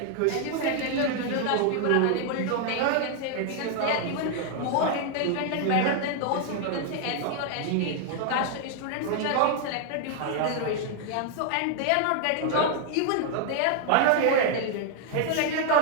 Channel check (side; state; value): both; different; correlation 0.00